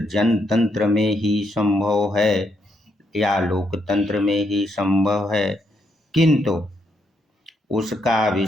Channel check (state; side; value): normal; both; correlation 0.77